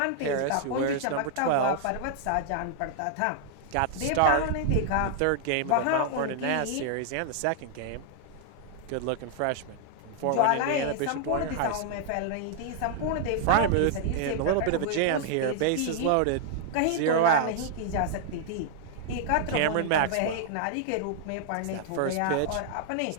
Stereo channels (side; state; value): both; different; correlation -0.01